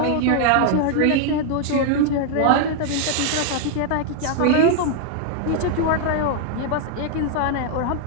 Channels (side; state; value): both; different; correlation 0.00